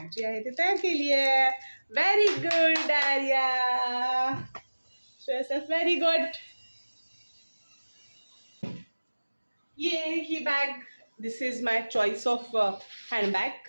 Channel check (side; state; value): both; inverted; correlation -1.00